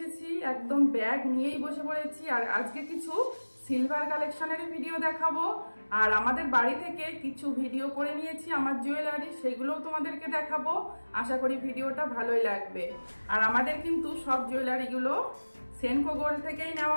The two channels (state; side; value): inverted; both; correlation -1.00